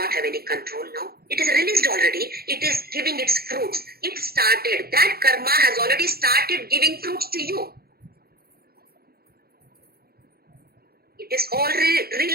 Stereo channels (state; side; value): late; left; 0.45 ms